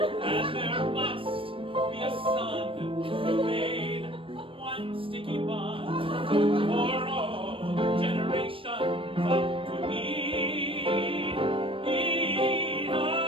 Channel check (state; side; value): late; left; 0.25 ms